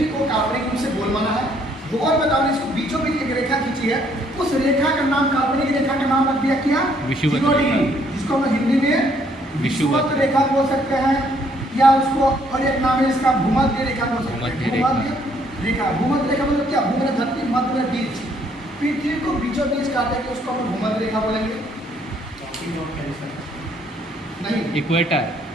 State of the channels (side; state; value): both; normal; correlation 0.67